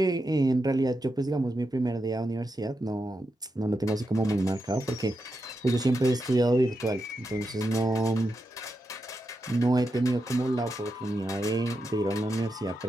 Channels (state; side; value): normal; both; correlation 0.87